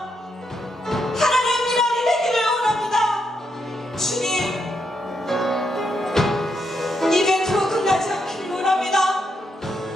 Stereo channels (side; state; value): both; normal; correlation 0.80